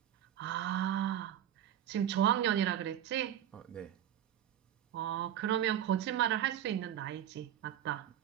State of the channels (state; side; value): quieter; left; 10.7 dB